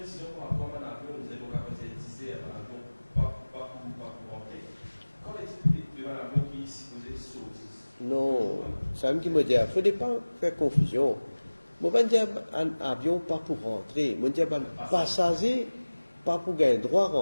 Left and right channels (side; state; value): both; inverted; correlation -1.00